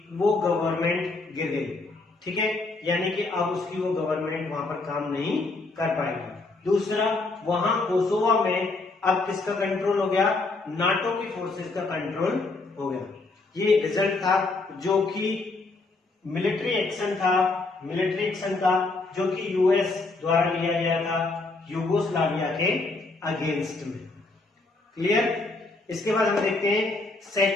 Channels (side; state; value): right; quieter; 3.4 dB